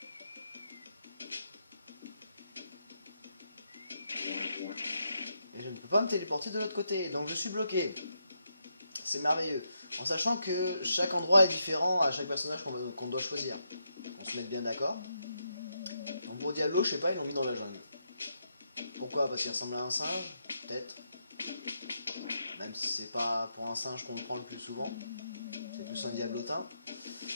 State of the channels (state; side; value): inverted; both; correlation -0.81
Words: Et je ne peux pas me téléporter de l'autre côté, donc je suis bloqué. C'est merveilleux. En sachant que chaque endroit est différent à chaque personnage qu'on doit choisir. On se met bien d'accord. Donc pour Diablo, je sais pas, ils l'ont mis dans la jungle. Pourquoi? Parce qu'il ressemble à un singe? Peut-être. Même si c'est pas pour un singe qu'on le prend le plus souvent. C'est plus un diablotin.